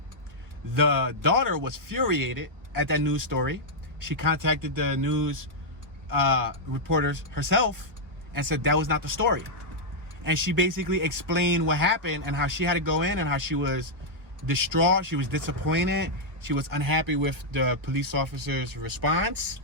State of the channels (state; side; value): late; left; 1.4 ms